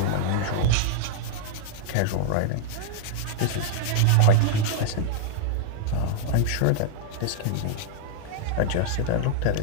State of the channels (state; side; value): different; both; correlation 0.00